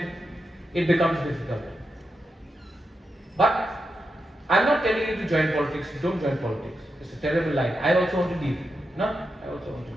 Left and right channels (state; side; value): normal; both; correlation 0.87